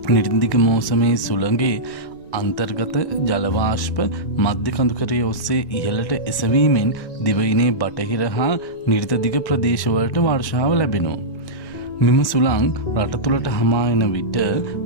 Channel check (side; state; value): right; late; 1.9 ms